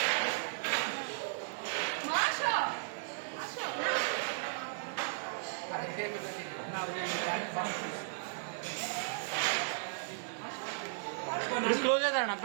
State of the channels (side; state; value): left; silent; digital silence